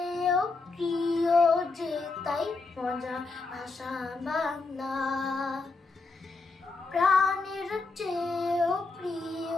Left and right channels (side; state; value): right; quieter; 3.8 dB